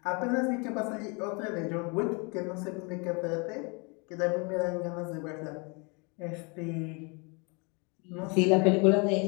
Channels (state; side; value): quieter; right; 31.6 dB